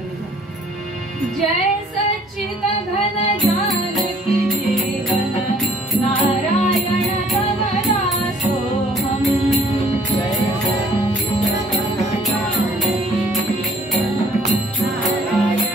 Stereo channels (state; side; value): normal; both; correlation 0.59